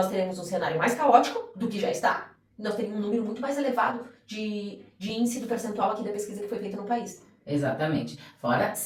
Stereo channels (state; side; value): identical; both; correlation 1.00